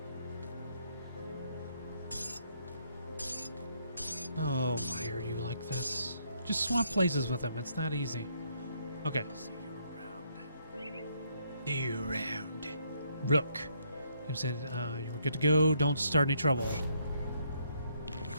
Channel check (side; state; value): both; inverted; correlation -0.72